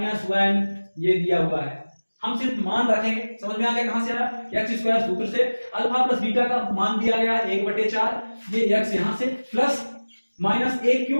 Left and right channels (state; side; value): inverted; both; correlation -1.00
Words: ये दिया हुआ है। हम सिर्फ मान रखेंगे, समझ में आ गया कहां से आया, x स्क्वायर सूत्र से अल्फा प्लस बीटा का मान दिया गया 1/4, ये x यहां से प्लस -1